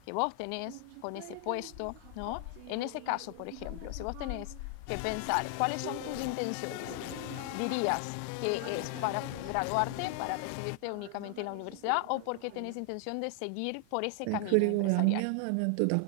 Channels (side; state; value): both; different; correlation 0.00